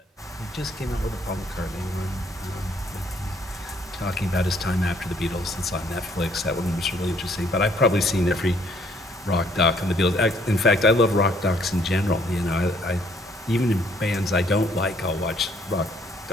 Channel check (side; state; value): both; normal; correlation 0.64